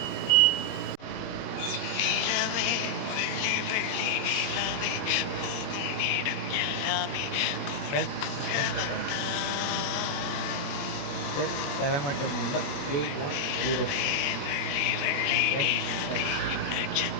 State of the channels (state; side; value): late; right; 21 ms